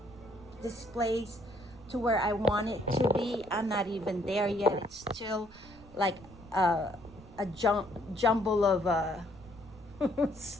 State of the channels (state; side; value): noise; right; rumble, 21 dB below the sound